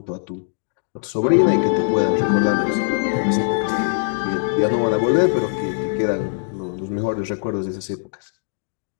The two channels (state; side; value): silent; right; digital silence